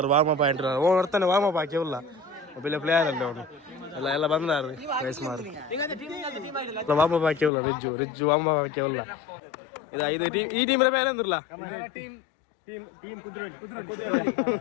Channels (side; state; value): right; drops out; at 7.5 s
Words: ವಾರ್ಮಪ್ ಆಂಟ್ಲಾರು ಓ ಬರ್ತಾನೆ ವಾರ್ಮಪ್ ಹಾಕಿ ಉಲ್ಲ ಒಬ್ಬ ಪ್ಲೇಯರ್ ಅಲ್ಲ ಅವನು ಎಲ್ಲ ಬಂದಾರು ವಯಸ್ಸು ಮಾರು ವಾರ್ಮಪ್ ಹಾಕಿ ಉಲ್ಲ ರಿಜ್ಜು ವಾರ್ಮಪ್ ಹಾಕಿ ಉಲ್ಲ ಇದು ಈ ಟೀಮ್ ಬೇರೆ ಅಂದ್ರಲ್ಲ